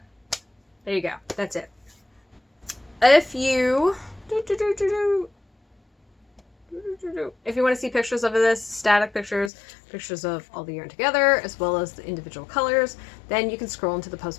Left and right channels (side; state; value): right; drops out; at 9.5 s